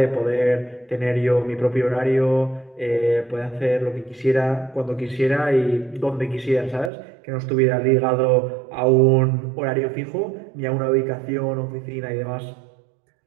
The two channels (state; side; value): drops out; left; at 6.9 s